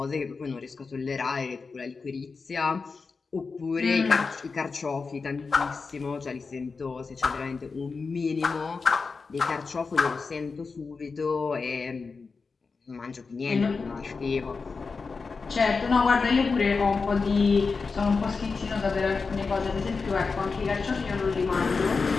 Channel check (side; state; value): right; quieter; 4.6 dB